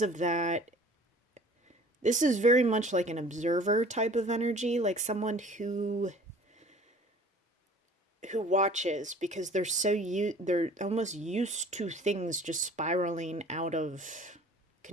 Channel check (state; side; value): normal; both; correlation 0.48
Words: that, this is very much like an observer type of energy, like someone who watches because they're almost used to things just spiraling out of